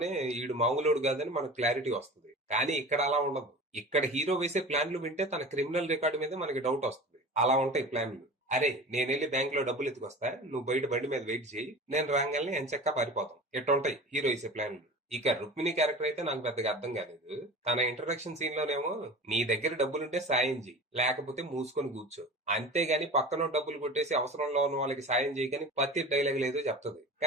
ఈడు మామూలుడు కాదని మనకు క్లారిటీ వస్తుంది. కానీ ఇక్కడ అలా ఉండదు. ఇక్కడ హీరో వేసే ప్లాన్లు వింటే తన క్రిమినల్ రికార్డు మీద మనకి డౌట్ వస్తుంది. అలా ఉంటాయి ప్లాన్లు. అరే, నేను వెళ్ళి బ్యాంక్ లో డబ్బులు ఎత్తుకొస్తా, నువ్వు బయట బండి మీద వెయిట్ చేయి, నేను రాగానే ఎంచక్కా పారిపోతాం, ఎట్టుంటాయి హీరో వేసే ప్లాన్లు. ఇక రుక్మిణి క్యారెక్టర్ అయితే నాకు పెద్దగా అర్థం కాలేదు. తన ఇంట్రడక్షన్ సీన్ లోనేమో నీ దగ్గర డబ్బులుంటే సాయం చేయి, లేకపోతే మూసుకొని కూర్చో, అంతేగాని పక్కన డబ్బులు కొట్టేసి అవసరంలో ఉన్న వాళ్ళకి సాయం చేయకని పత్తి డైలాగ్ లేదో చెప్తుంది.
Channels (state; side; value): normal; both; correlation 0.36